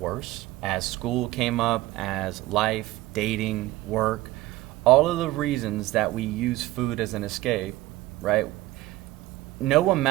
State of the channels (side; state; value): left; quieter; 17.4 dB